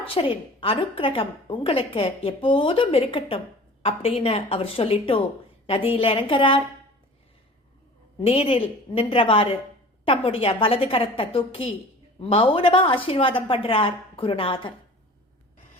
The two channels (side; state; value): both; normal; correlation 0.42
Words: அனுக்கிரகம் உங்களுக்கு எப்போதும் இருக்கட்டும் அப்படின்னு அவர் சொல்லிட்டு நதியில் இறங்குறார். நீரில் நின்றவாறு தம்முடைய வலது கரத்தை தூக்கி மௌனமா ஆசீர்வாதம் பண்றார் குருநாதர்.